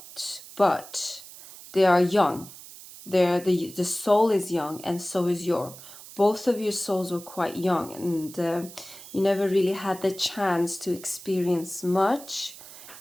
they are young. The soul is young, and so is both of your souls were quite young, and you never really had the chance to experience much.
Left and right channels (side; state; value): right; noise; hiss, 16 dB below the sound